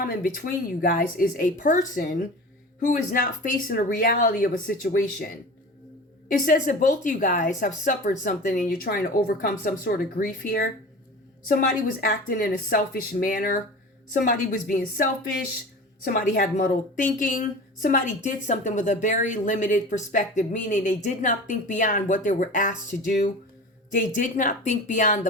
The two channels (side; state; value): both; normal; correlation 0.35